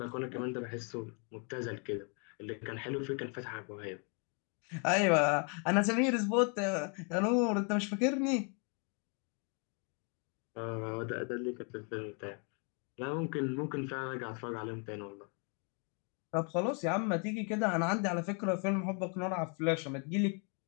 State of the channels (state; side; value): quieter; right; 38.0 dB